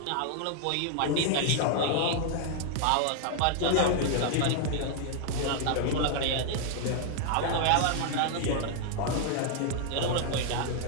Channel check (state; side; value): different; both; correlation 0.00